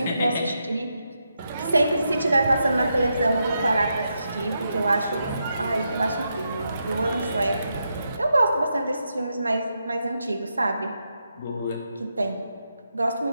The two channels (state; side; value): inverted; both; correlation -0.84